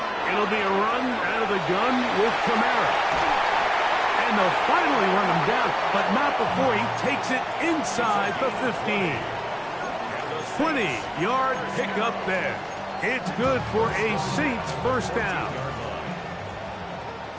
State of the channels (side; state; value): both; identical; correlation 1.00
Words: It'll be a run out of the gun with Kamara. And they'll finally run him down, but not before he takes it inside the 15. 20-yard pickup there. It's good for a Saints first down.